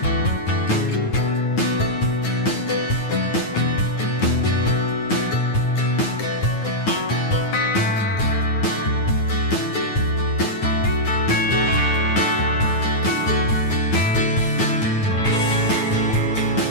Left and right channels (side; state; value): right; late; 9.4 ms